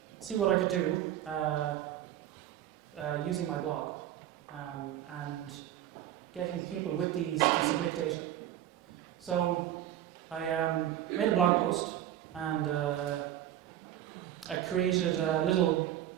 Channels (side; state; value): left; quieter; 12.1 dB